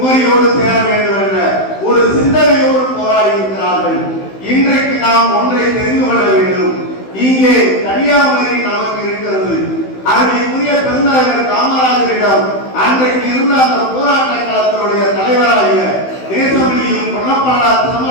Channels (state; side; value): late; right; 16 ms